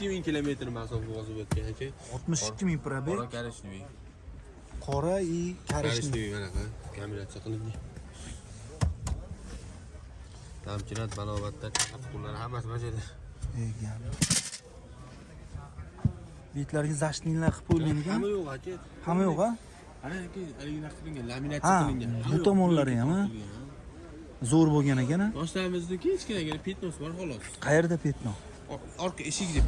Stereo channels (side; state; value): both; identical; correlation 1.00